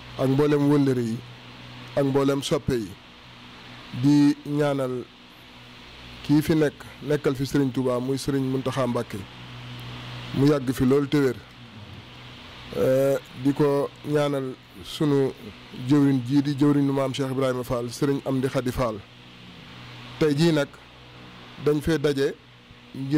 ak mboolem wëllëre yi ak mboolem soppe yi di ñaanal kii fi nekkal fi sëriñ Touba muy sëriñ Mountakha Mbacké mu yàgg fi loolu te wér di ko ñaanal sunu jëwriñ jii di jëwriñu maam Cheikh Ibrahima Fall sëriñ Amdi Khady Fall tey jii nag dañ fee daje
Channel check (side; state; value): both; identical; correlation 1.00